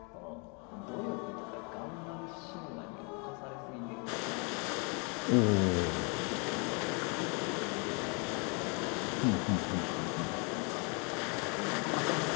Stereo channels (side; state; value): right; quieter; 34.2 dB